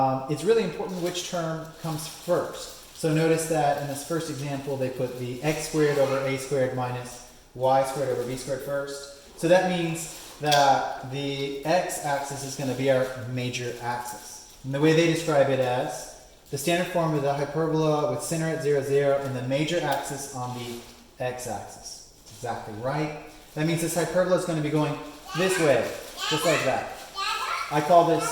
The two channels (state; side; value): identical; both; correlation 1.00